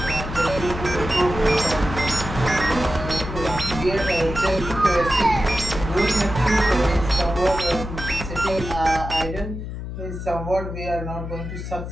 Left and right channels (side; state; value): left; noise; hum, 7 dB below the sound